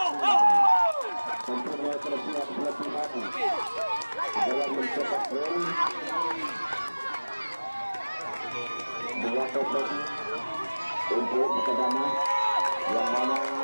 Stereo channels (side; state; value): both; inverted; correlation -1.00